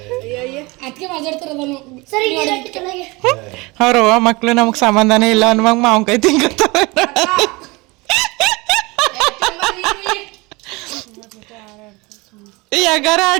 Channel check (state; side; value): quieter; left; 24.7 dB